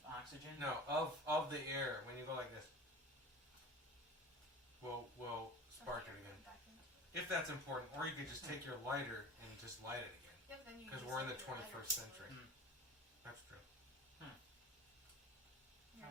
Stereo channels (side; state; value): both; normal; correlation 0.37